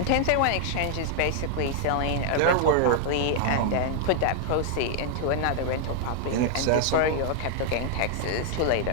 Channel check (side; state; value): both; different; correlation 0.00